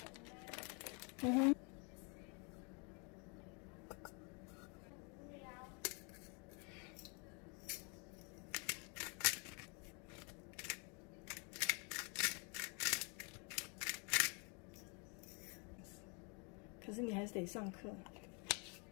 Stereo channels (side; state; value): right; quieter; 34.8 dB